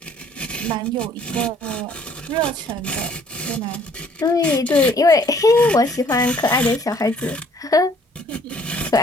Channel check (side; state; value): both; normal; correlation 0.60